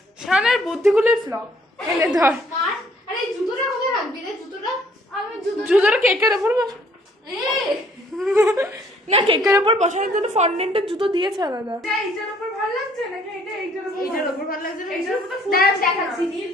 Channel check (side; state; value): both; normal; correlation 0.62